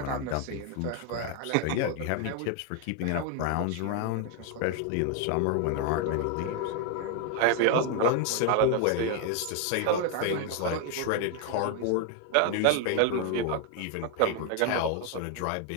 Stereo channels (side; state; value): both; different; correlation 0.01